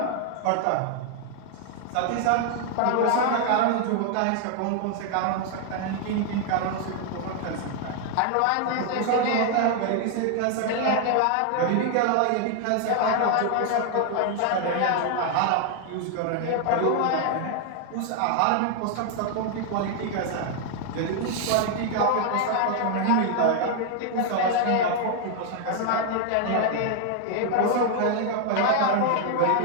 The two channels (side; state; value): both; different; correlation 0.00